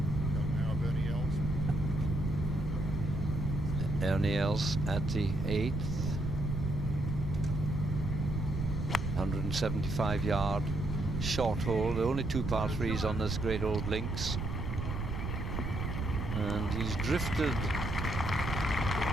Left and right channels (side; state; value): right; noise; rumble, 3 dB below the sound